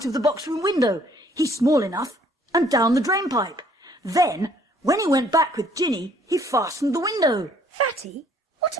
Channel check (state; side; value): normal; both; correlation 0.61